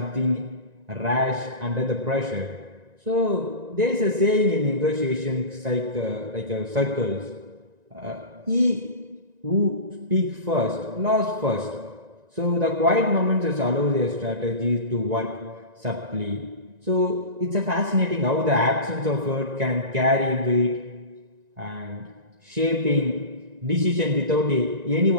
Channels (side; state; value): left; late; 1.9 ms